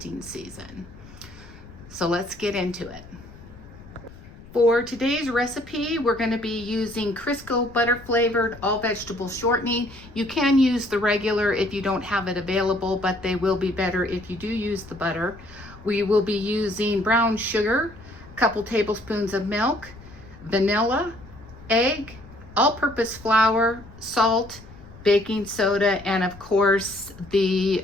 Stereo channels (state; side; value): noise; left; rumble, 19 dB below the sound